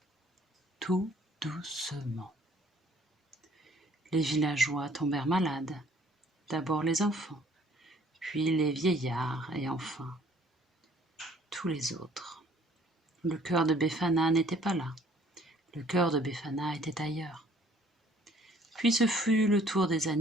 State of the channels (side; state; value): both; normal; correlation 0.59